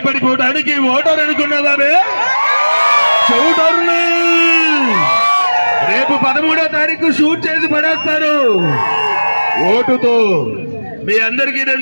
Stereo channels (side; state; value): both; inverted; correlation -1.00